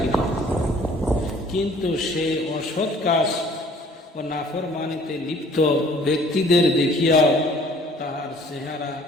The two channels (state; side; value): normal; both; correlation 0.55